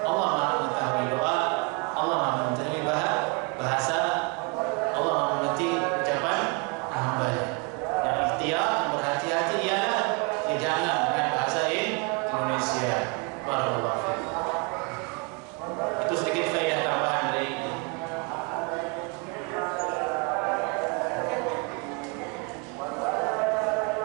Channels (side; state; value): left; quieter; 32.7 dB